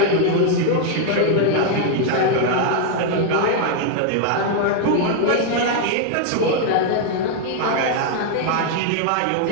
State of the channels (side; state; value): both; different; correlation 0.00